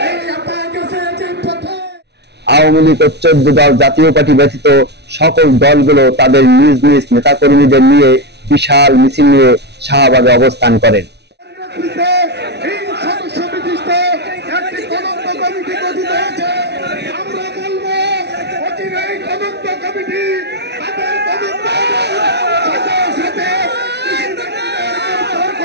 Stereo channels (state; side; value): late; left; 0.49 ms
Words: আওয়ামী লীগ ও 14 দল জাতীয় পার্টি ব্যতীত সকল দলগুলো তাদের নিজ নিজ নেতাকর্মীদের নিয়ে বিশাল মিছিল নিয়ে শাহবাগে অবস্থান করেন।